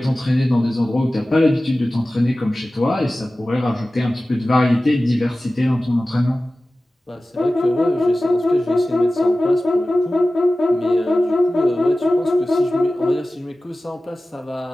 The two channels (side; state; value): both; normal; correlation 0.96